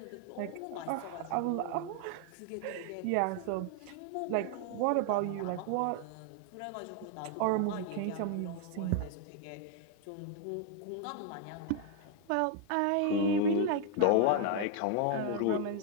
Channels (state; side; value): different; both; correlation 0.00